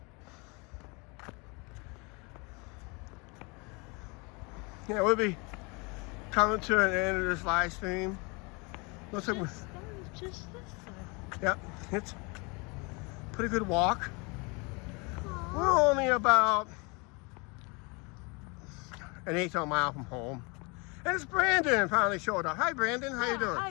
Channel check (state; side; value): quieter; right; 29.6 dB